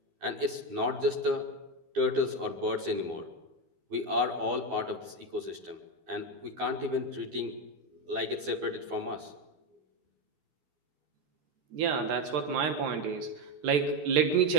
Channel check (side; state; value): left; late; 12 ms